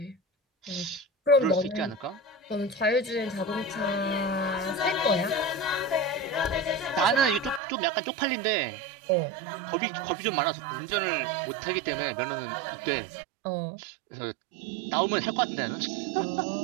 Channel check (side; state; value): left; drops out; at 7.6 s